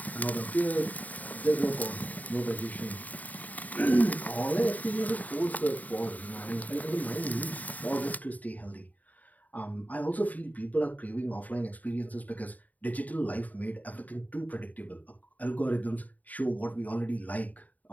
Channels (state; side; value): late; right; 0.075 ms